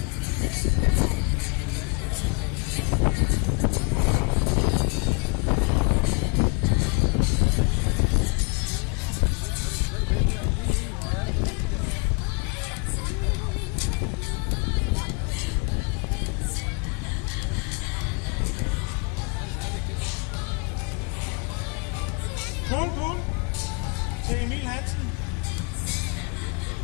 Cool til Emil Hansen.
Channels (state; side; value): quieter; right; 32.1 dB